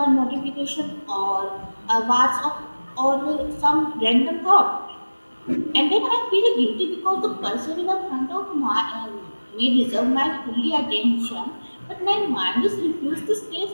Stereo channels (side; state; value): both; inverted; correlation -1.00